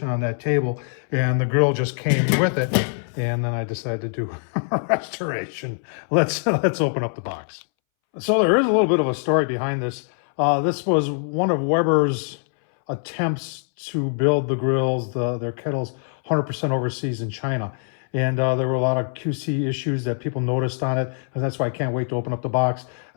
on that table, and the grill just came with it. And then I decided to do a restoration. Let's open up the box. So there is a little bit of a story behind this. This was one of Weber's attempts to build the grills, their kettles, 100% overseas in China. And there were a lot of QC issues that people noticed on it, and that's why I can't wait to open up the box.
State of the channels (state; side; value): silent; right; 63 dB below the other